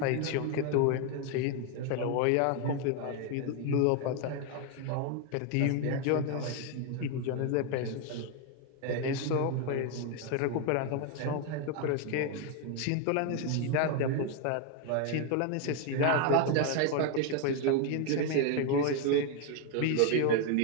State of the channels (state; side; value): different; both; correlation 0.01